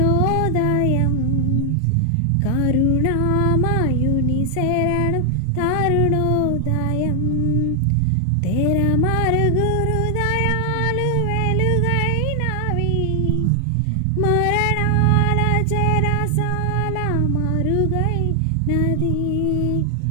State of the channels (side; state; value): both; different; correlation 0.00